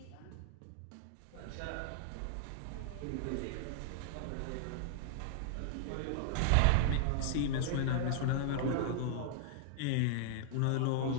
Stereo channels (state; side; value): different; both; correlation -0.01